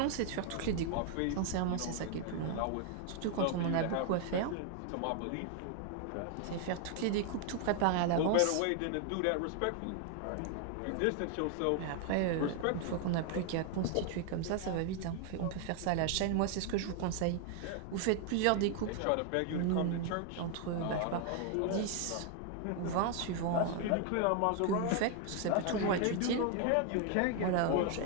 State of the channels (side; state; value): both; different; correlation 0.00